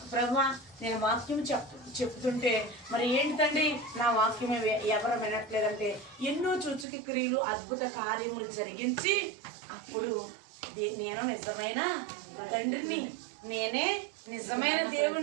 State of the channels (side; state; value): left; drops out; at 6.9 s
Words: ప్రభువా నేను వాక్యం చెప్తుంటే మరి ఏంటండి నా వాక్యం ఎవరు వినట్లేదంటే ఎన్నో సూచక క్రియలు అద్భుత కార్యములు జరిగించి అప్పుడు నేను నిజమైన తండ్రిని, నేనే నిజమైన